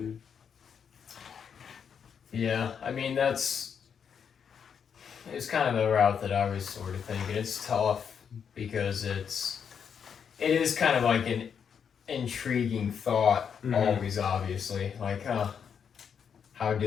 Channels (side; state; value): right; quieter; 7.3 dB